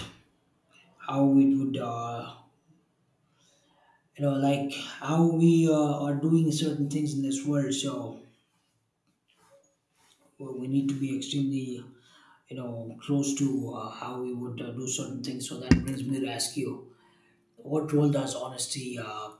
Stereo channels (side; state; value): both; identical; correlation 1.00